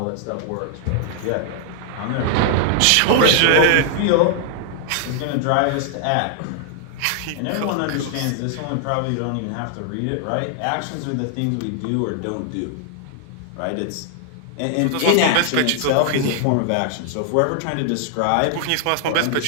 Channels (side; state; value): both; different; correlation 0.00